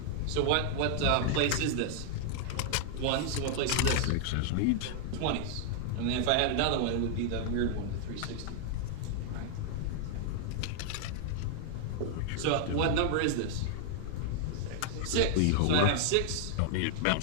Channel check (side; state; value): both; different; correlation -0.01